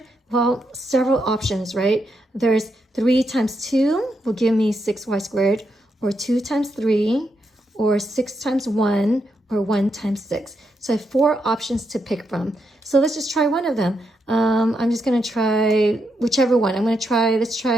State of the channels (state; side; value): normal; both; correlation 0.82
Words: Well, several options, right? There's 3 times 2 will give me 6y squared, or 2 times 3, or 6 times 1, or 1 times 6. So I have 4 options to pick from. So let's just try one of them. I'm just going to try whichever one. Let's